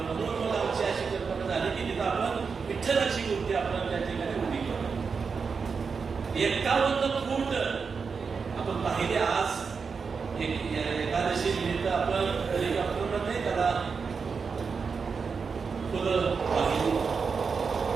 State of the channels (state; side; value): quieter; left; 5.4 dB